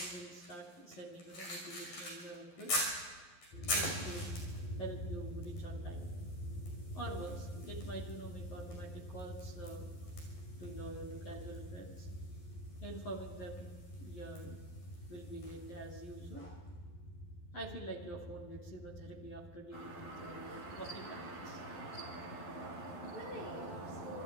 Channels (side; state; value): right; late; 11 ms